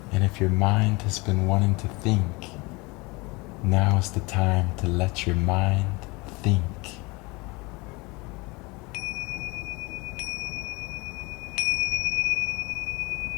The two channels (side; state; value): right; quieter; 25.5 dB